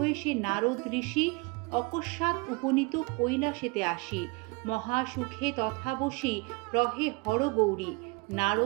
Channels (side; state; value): left; quieter; 27.8 dB